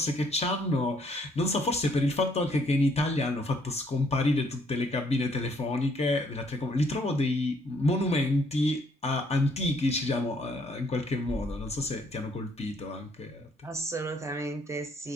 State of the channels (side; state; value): both; normal; correlation 0.67